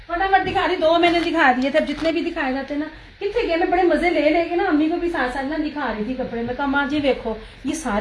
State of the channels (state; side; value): identical; both; correlation 1.00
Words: फटाफट दिखा रही, 2 मैंने दिखा दिए थे। अब जितने भी दिखाए जाते हैं ना, कितने गए, मैं बड़े मजे ले लेके ना अम्मी को भी साथ साथ ना दिखा रही थी कपड़े में। कहा माँ जी देखो ये